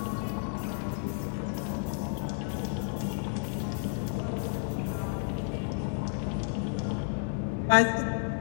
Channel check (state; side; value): silent; right; 55 dB below the other